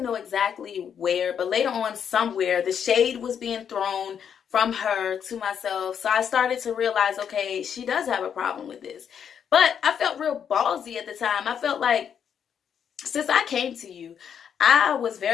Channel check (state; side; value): quieter; right; 8.0 dB